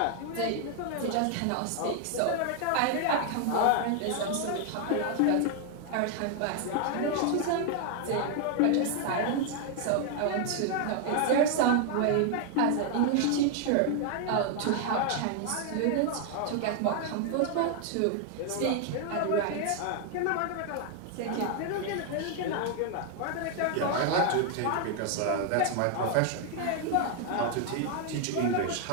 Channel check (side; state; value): both; different; correlation 0.00